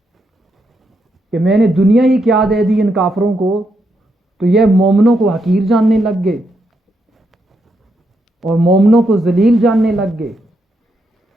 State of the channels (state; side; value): normal; both; correlation 0.81